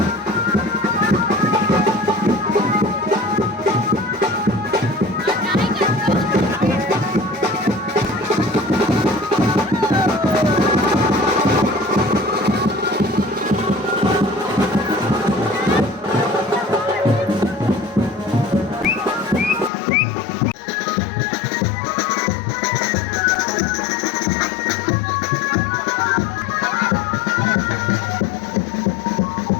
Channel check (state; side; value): drops out; right; at 19.7 s